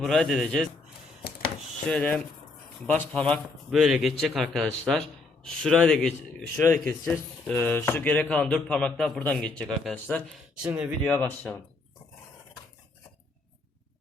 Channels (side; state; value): right; quieter; 3.6 dB